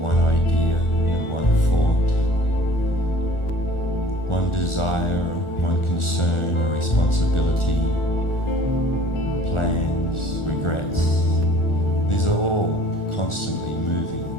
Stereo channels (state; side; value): late; right; 1.4 ms